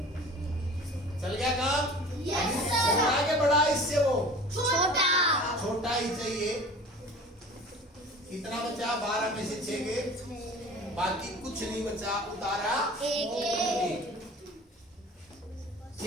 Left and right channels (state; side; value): normal; both; correlation 0.42